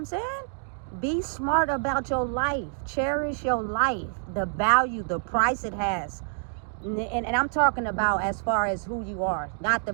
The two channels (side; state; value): left; silent; digital silence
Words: saying? Be smart about your life. Cherish your life, the value, the price it has. And I'm talking about as far as who you are, not the